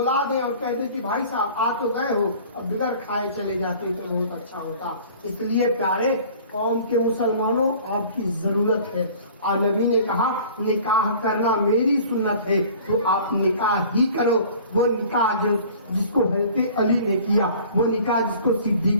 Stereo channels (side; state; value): both; inverted; correlation -0.47